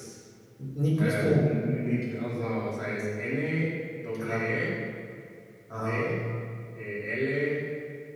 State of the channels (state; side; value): identical; both; correlation 1.00